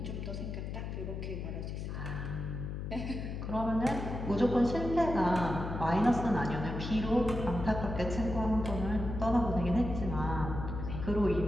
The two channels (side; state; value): left; noise; hum, 5 dB below the sound